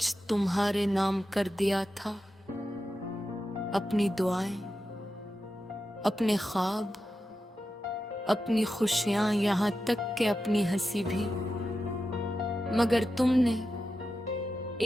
तुम्हारे नाम कर दिया था, अपनी दुआएं, अपने ख्वाब, अपनी खुशियां, यहाँ तक कि अपनी हंसी भी। मगर तुमने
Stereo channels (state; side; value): normal; both; correlation 0.90